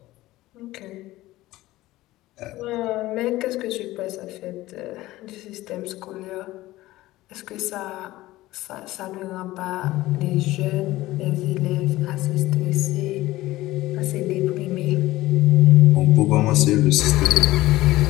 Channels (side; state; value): right; quieter; 17.2 dB